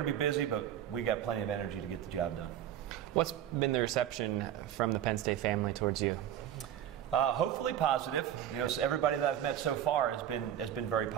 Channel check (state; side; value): quieter; left; 10.7 dB